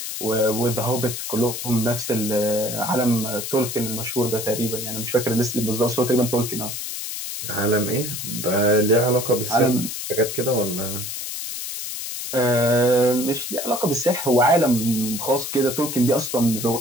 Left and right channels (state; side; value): noise; left; hiss, 6 dB below the sound